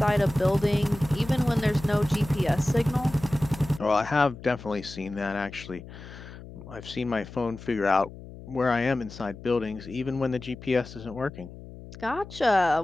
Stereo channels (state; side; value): noise; left; hum, 15 dB below the sound